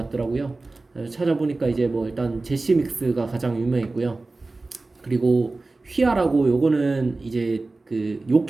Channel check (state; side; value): quieter; left; 3.4 dB